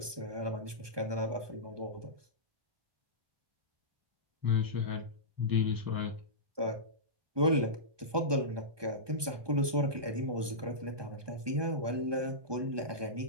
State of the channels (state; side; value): late; left; 1.2 ms